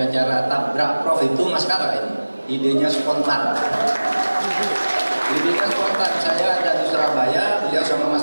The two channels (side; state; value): both; inverted; correlation -1.00